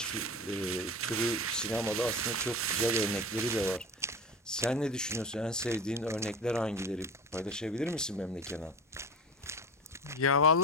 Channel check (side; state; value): both; normal; correlation 0.29